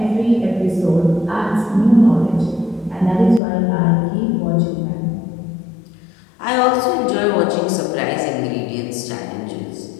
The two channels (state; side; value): drops out; right; at 3.4 s